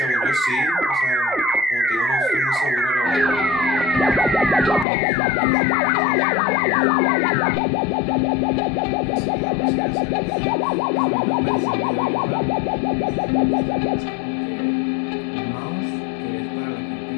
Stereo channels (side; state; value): right; drops out; at 4.9 s